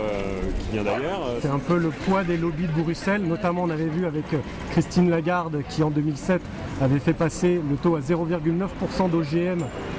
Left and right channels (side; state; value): both; identical; correlation 1.00